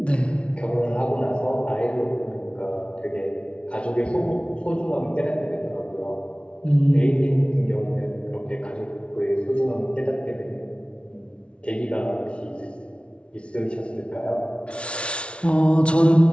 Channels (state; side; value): late; right; 0.060 ms